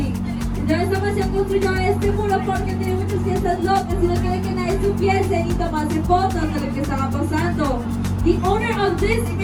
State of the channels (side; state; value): both; identical; correlation 1.00